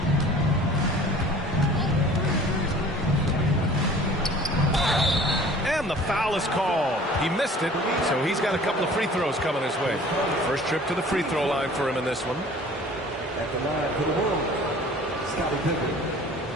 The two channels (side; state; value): both; normal; correlation 0.47